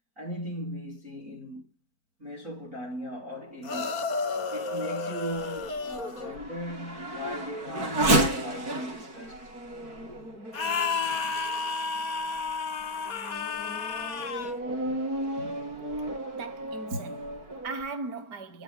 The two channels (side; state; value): left; late; 4.5 ms